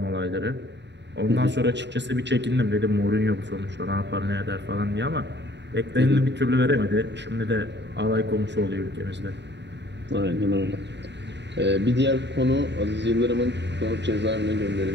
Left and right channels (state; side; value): late; left; 0.51 ms